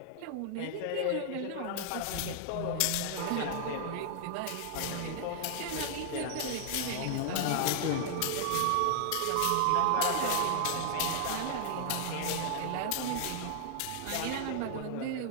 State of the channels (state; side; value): different; both; correlation -0.01